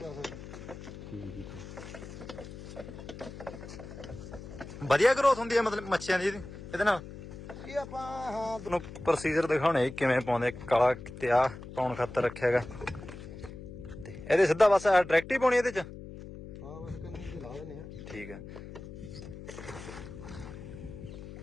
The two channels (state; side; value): noise; left; hum, 13 dB below the sound